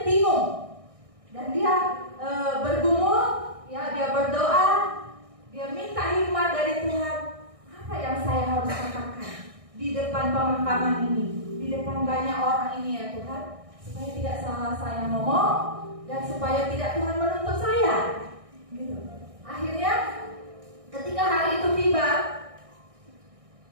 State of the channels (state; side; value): late; left; 1.6 ms